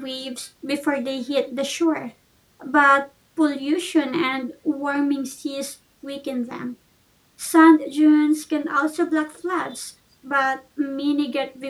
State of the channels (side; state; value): both; identical; correlation 1.00